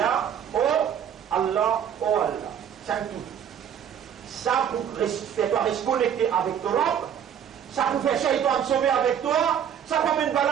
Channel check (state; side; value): quieter; left; 8.8 dB